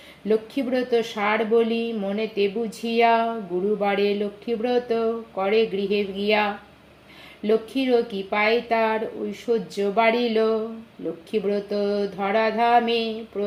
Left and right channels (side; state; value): both; identical; correlation 1.00